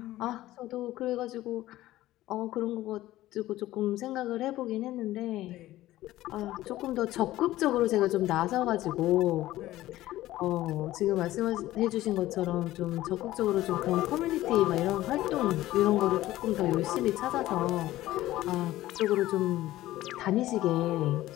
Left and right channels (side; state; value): right; quieter; 15.6 dB